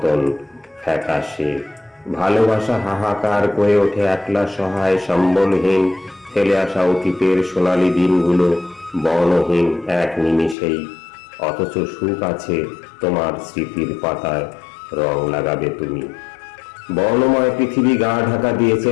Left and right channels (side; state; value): right; drops out; at 10.6 s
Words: ফ্যাকাশে। ভালোবাসা হাহাকার করে ওঠে একলা সহায় সম্বলহীন, ফেলে আসা অতীতের সোনালি দিনগুলো বর্ণহীন এক নিমিষেই। অথচ সুখ আছে তোমার স্মৃতির পাতায়, রং লাগাবে তুমি। বর্ণময় পৃথিবী গা ঢাকা দিয়েছে